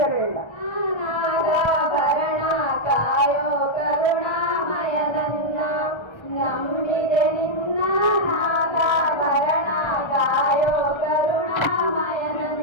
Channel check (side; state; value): right; late; 1.3 ms